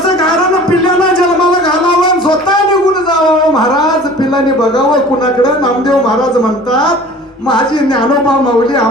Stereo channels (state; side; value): normal; both; correlation 0.44